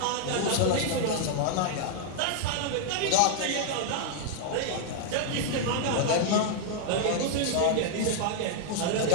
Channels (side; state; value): both; different; correlation 0.00